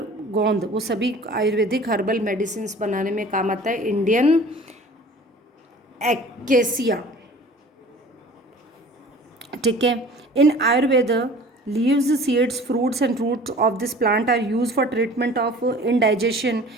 गोंद, वो सभी आयुर्वेदिक हर्बल मेडिसिन बनाने में काम आता है। इंडियन एक्केसिया, ठीक है। In Ayurveda leaves, seeds, fruits and roots of this plant are use for treatment of indigestion,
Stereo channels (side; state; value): both; normal; correlation 0.45